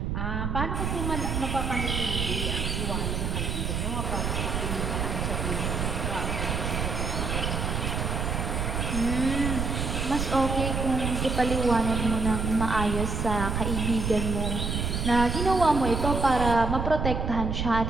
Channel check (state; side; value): noise; right; rumble, 1 dB below the sound